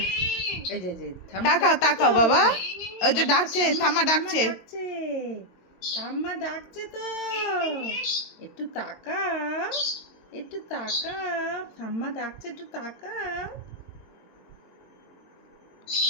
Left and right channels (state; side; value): late; right; 22 ms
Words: এই যে তাকাও তাকাও বাবা, ওই যে ডাকছে, ঠাম্মা ডাকছে। ঠাম্মা ডাকছে তো, একটু তাকাও, একটু তাকাও, ঠাম্মা ডাকছে, একটু তাকাও।